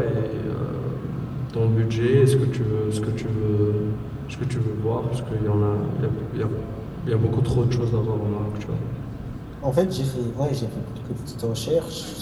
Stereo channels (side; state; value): both; identical; correlation 1.00